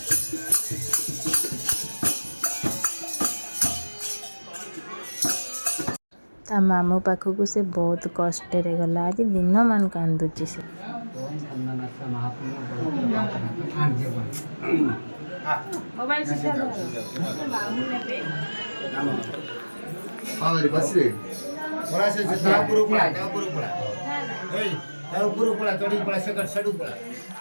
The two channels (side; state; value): both; inverted; correlation -1.00